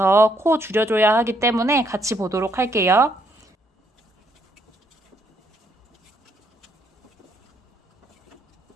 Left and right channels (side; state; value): both; normal; correlation 0.71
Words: 코 줄여줘야 하기 때문에 같이 보도록 할게요.